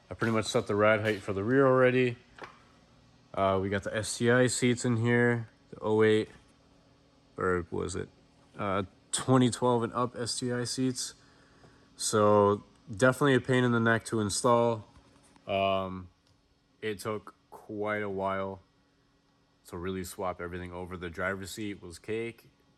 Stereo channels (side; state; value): both; identical; correlation 1.00